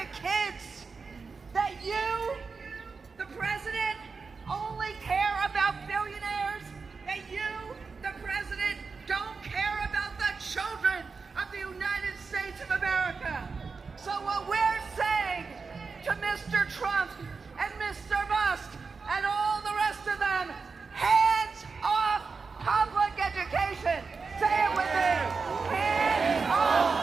kids? That you, the president, only care about billionaires? That you, the president, don't care about the children of the United States of America? So what we're saying to Mr. Trump and Mr. Musk and all the rest of them, hands off public education. Say it with me. Hands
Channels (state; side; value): quieter; left; 4.7 dB